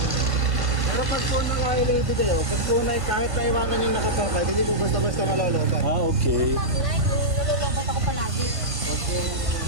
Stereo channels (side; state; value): left; late; 1.5 ms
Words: Pero pag po naka-related eh, pag po kahit naiwanan yung nakapakay, hindi po basta-basta malolobat. Okay. Mag-light, nalulobot ako palagi.